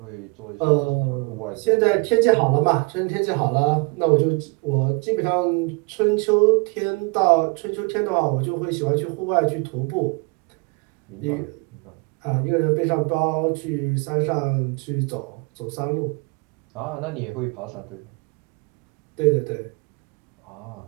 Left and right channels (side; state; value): left; quieter; 30.7 dB